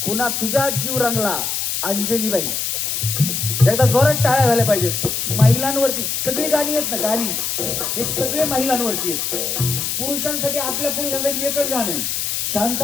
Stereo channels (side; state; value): left; noise; hiss, 1 dB below the sound